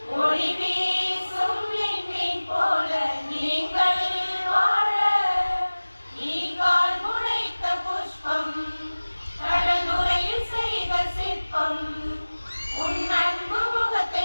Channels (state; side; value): inverted; both; correlation -1.00